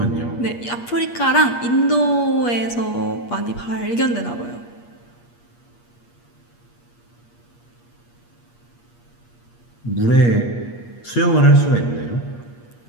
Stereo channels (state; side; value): late; right; 8.4 ms